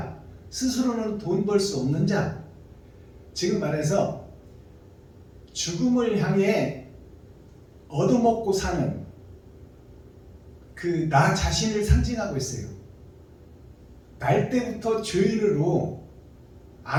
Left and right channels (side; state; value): both; identical; correlation 1.00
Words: 스스로는 돈 벌 수 없는 자, 지금 말해서 죽음을 향해 얻어먹고 사는 그 나 자신을 상징하고 있어요. 날 때부터 죄인으로